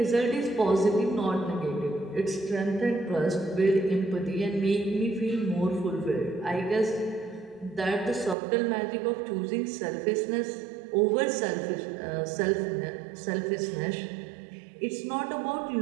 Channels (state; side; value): drops out; left; at 8.3 s